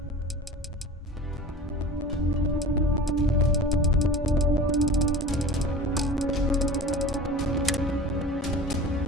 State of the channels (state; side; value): normal; both; correlation 0.37